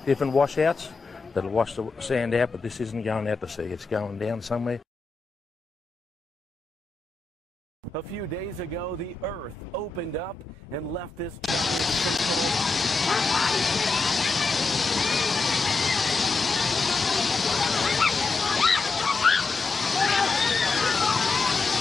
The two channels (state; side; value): quieter; right; 4.1 dB